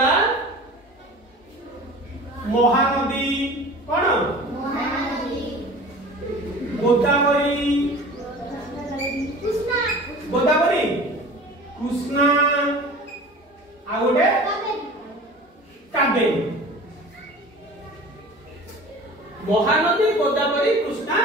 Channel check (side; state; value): both; normal; correlation 0.40